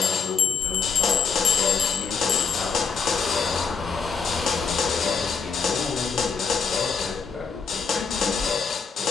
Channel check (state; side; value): quieter; right; 5.5 dB